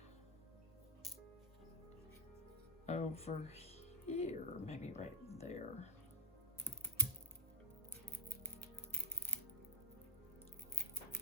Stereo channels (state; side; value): normal; both; correlation 0.03